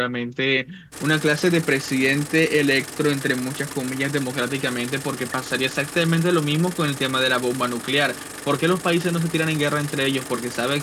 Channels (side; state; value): both; identical; correlation 1.00